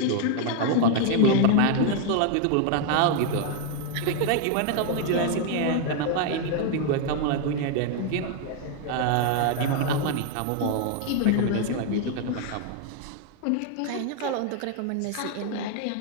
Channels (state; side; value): different; both; correlation 0.00